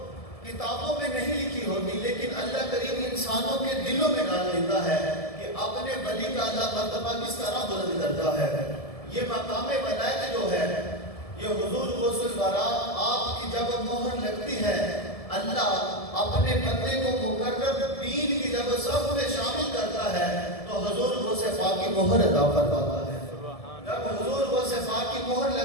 کتابوں میں نہیں لکھی ہوتی، لیکن اللہ کریم انسانوں کے دلوں میں ڈال دیتا ہے کہ اپنے ولی کا اللہ مرتبہ کس طرح بلند کرتا ہے۔ یہ مقام ولایت جو ہے، یہ حضور غوث الورا آپ کی جب مہر لگتی ہے، اللہ اپنے بندے کو مقرر دین کی جب صف میں شامل کرتا ہے تو حضور غوث پاک کی مہر عطا فرماتا ہے۔ جب حضور غوث پاک کی مہر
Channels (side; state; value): right; late; 1.7 ms